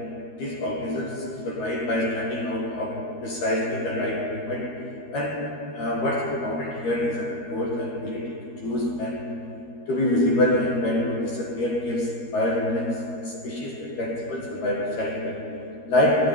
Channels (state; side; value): late; right; 13 ms